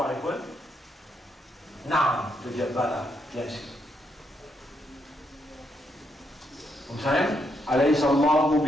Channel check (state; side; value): normal; both; correlation 0.78